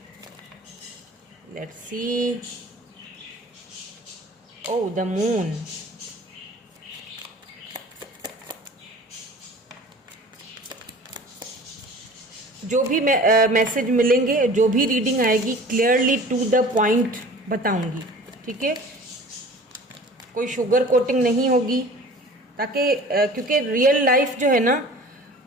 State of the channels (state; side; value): normal; both; correlation 0.43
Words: Let's see, oh the moon, जो भी मैसेज मिलेंगे, जो भी रीडिंग आएगी, क्लियरली टू द पॉइंट बताऊंगी, ठीक है, कोई शुगर कोटिंग नहीं होगी, ताकि क्योंकि रियल लाइफ जो है ना,